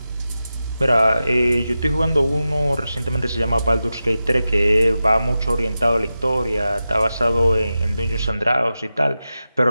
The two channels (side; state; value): both; inverted; correlation -0.92